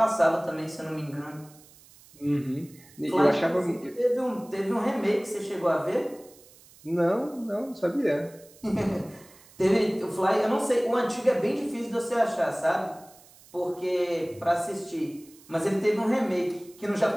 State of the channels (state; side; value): noise; right; hiss, 25 dB below the sound